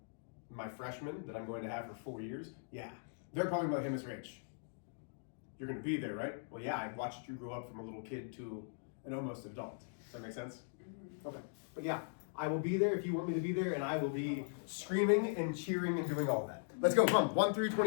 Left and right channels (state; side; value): silent; right; digital silence